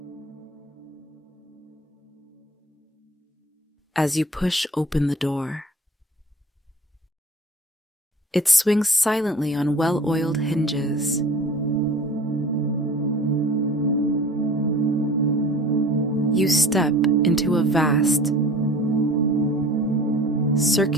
As you push open the door, it swings silently on well-oiled hinges. You step into a vast,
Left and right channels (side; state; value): both; normal; correlation 0.43